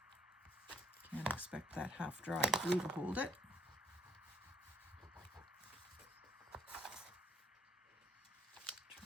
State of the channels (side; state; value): both; normal; correlation 0.70